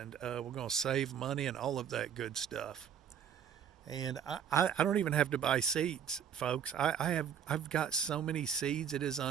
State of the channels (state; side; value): quieter; left; 8.5 dB